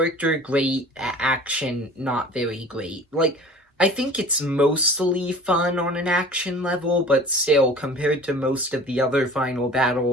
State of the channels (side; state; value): both; normal; correlation 0.44